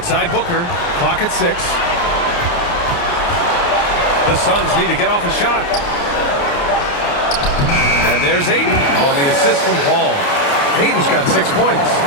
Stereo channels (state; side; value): late; right; 29 ms